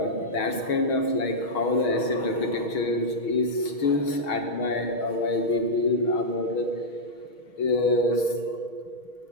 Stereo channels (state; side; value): late; right; 6.3 ms